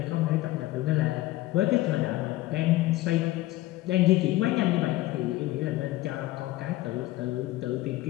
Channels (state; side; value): quieter; right; 17.2 dB